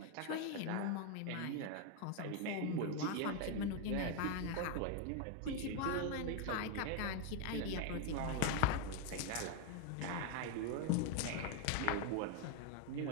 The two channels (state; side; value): different; both; correlation 0.00